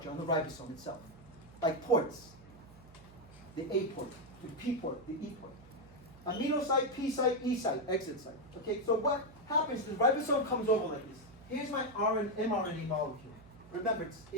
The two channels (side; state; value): right; noise; hum, 22 dB below the sound